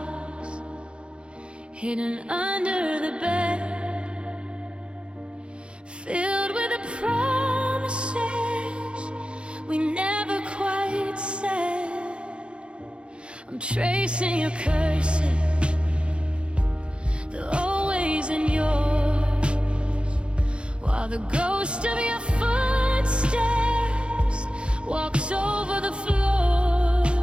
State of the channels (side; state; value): left; late; 0.056 ms